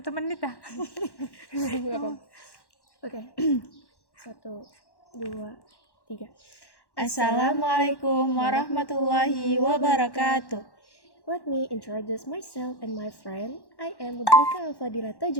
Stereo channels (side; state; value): right; late; 1.1 ms